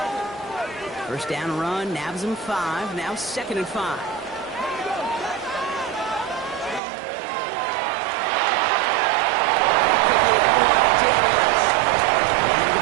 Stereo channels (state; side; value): drops out; left; at 6.8 s